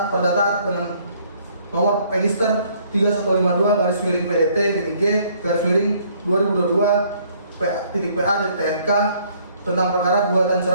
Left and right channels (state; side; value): inverted; both; correlation -0.63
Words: perdata dengan nomor register 3152-G/2022-PA.TNK tentang perkara gugatan